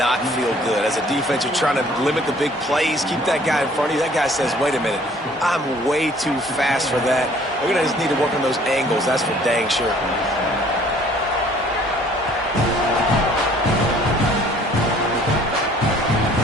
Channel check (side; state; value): both; normal; correlation 0.56